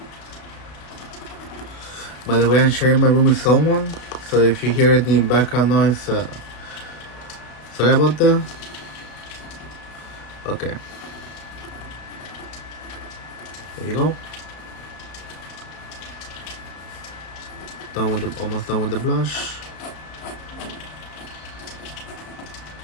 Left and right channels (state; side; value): late; right; 33 ms